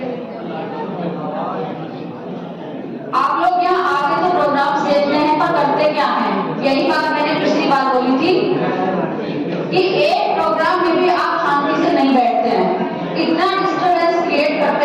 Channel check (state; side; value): identical; both; correlation 1.00